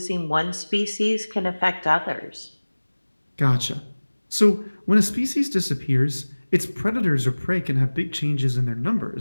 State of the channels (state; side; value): inverted; both; correlation -1.00